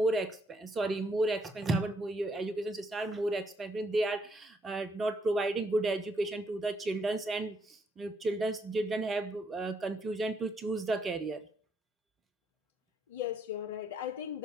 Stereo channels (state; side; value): normal; both; correlation 0.73